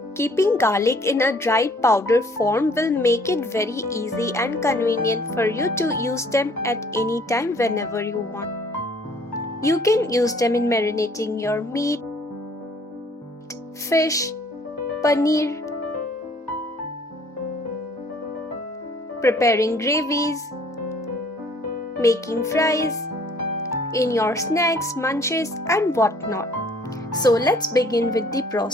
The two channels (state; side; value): normal; both; correlation 0.58